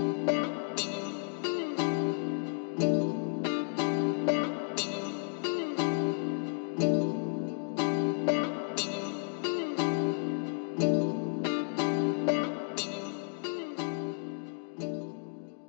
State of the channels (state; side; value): silent; right; 56 dB below the other